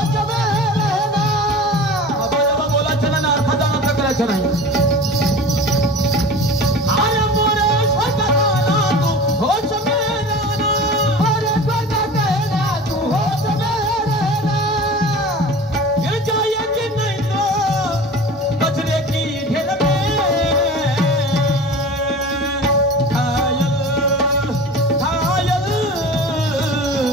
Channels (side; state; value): both; normal; correlation 0.37